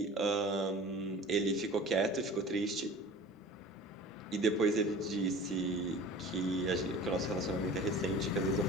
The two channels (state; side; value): normal; both; correlation 0.41